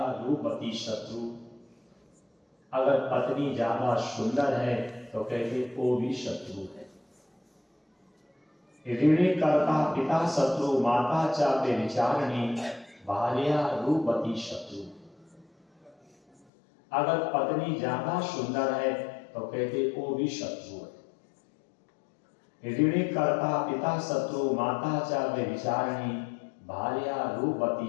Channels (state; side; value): drops out; right; at 16.4 s